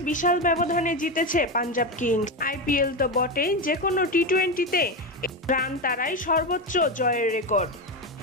বিশাল ব্যবধানে জিতেছে পাঞ্জাব কিংস। আইপিএল তো বটেই, যে কোনো টি-20তে রান তাড়াই সর্বোচ্চ জয়ের রেকর্ড।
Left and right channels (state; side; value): normal; both; correlation 0.15